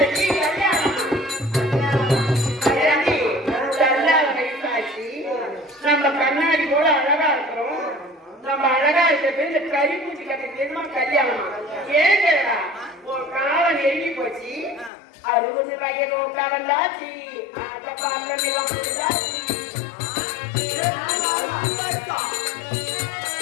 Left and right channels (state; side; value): drops out; right; at 14.9 s